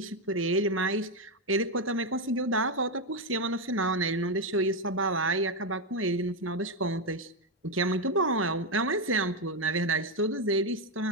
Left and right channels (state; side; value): normal; both; correlation 0.06